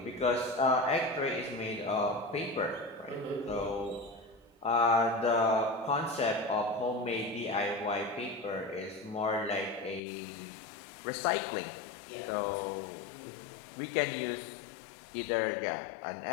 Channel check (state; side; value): drops out; right; at 10.0 s